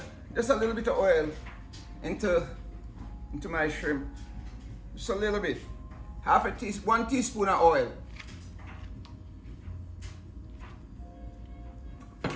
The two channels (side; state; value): both; identical; correlation 1.00